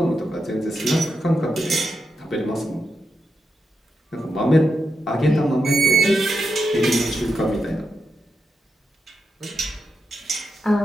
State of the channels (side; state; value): both; normal; correlation 0.86